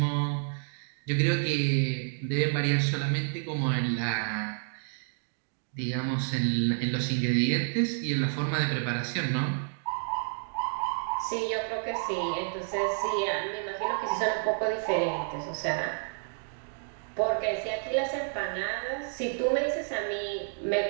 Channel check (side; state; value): left; silent; 55 dB below the other